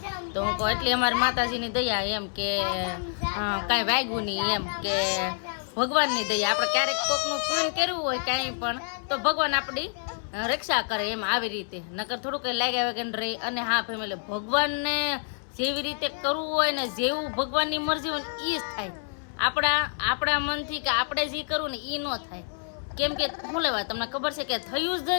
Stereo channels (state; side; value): silent; right; 60 dB below the other